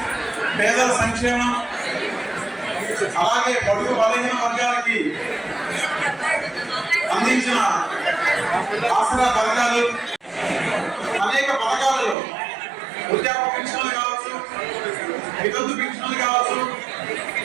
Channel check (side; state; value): left; drops out; at 12.2 s